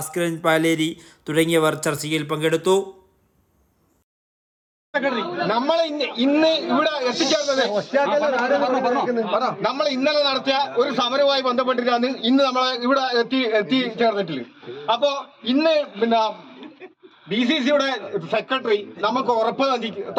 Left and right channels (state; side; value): identical; both; correlation 1.00